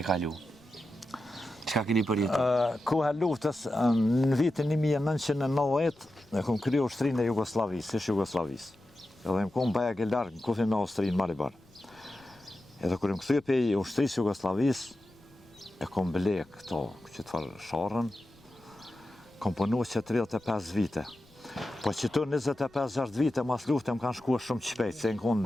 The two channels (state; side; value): noise; left; rumble, 30 dB below the sound